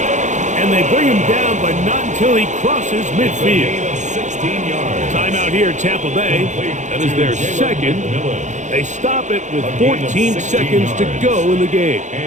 And they bring him down, but not until he crosses midfield. 16 yards. Timeout here, Tampa Bay. That is their second. They stop it with 14 seconds to go in the game.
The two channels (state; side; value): late; left; 0.35 ms